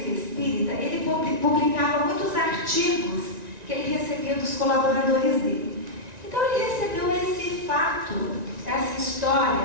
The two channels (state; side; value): late; left; 1.9 ms